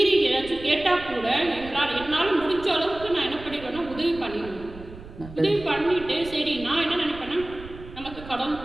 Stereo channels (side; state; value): right; noise; rumble, 16 dB below the sound